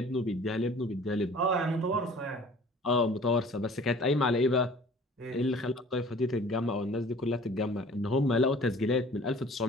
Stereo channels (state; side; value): normal; both; correlation 0.49